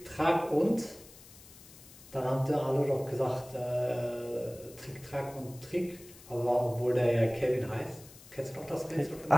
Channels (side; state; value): left; noise; hiss, 21 dB below the sound